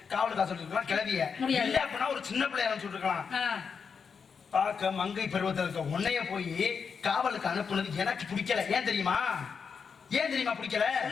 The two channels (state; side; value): quieter; right; 6.0 dB